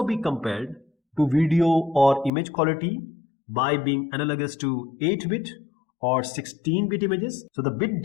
be compared to video or image quality by being analogous to 8-bit or 16-bit images. So the bit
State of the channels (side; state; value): right; drops out; at 2.3 s